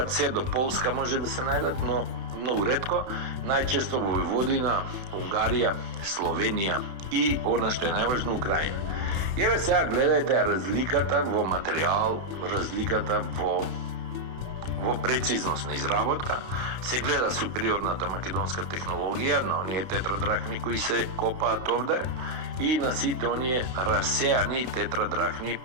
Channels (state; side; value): late; left; 31 ms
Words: се до Полска може да се најдат, но многу ретко, најчесто во Војводина, Унгарија, Словенија и она што е најважно Украина. И еве сега гледајте разликата во материјал, разликата во прецизност на изработка, се гледа супериорната македонска технологија на оние тетрадрахми кои се копаат овде и на сите оние расеани тетрадрахми